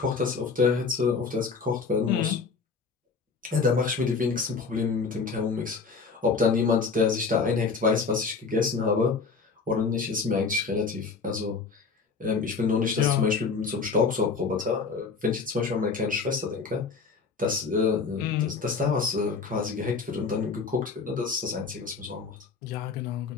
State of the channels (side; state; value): right; quieter; 4.9 dB